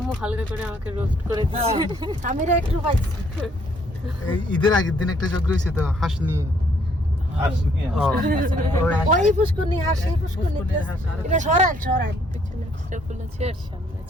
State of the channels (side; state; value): both; normal; correlation 0.67